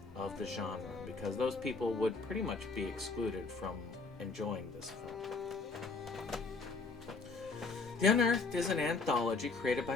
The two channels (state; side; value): quieter; right; 4.1 dB